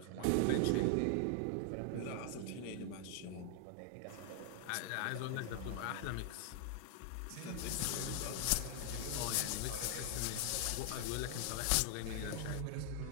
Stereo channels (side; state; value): both; different; correlation 0.00